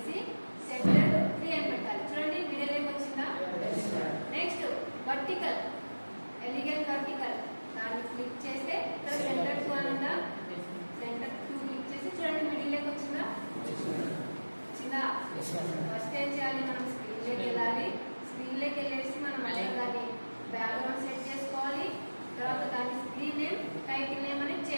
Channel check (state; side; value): inverted; both; correlation -1.00